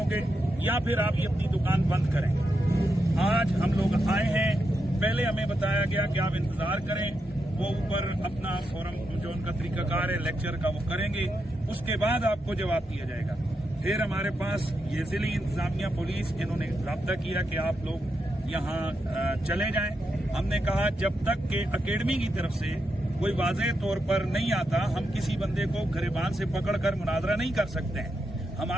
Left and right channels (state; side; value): normal; both; correlation 0.85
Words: या फिर आप ये अपनी दुकान बंद करें। आज हम लोग आए हैं, पहले हमें बताया गया कि आप इंतजार करें, वो ऊपर अपना फोरम जो उनका तरीकाकार है लेक्चर का वो करेंगे, उसके बाद आपको जवाब दिया जाएगा। फिर हमारे पास ये जिली इंतजामिया पुलिस, इन्होंने राब्ता किया कि आप लोग यहाँ चले जाएं। हमने कहा जब तक के अकेडमी की तरफ से कोई वाज़ेह तौर पर नहीं आता, हम किसी बंदे को गिरबान से पकड़कर मुनाजरा नहीं कर सकते हैं।